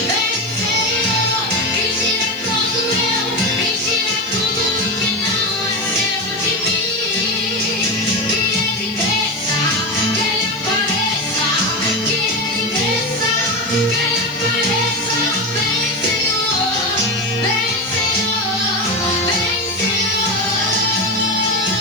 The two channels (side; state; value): left; noise; hiss, 24 dB below the sound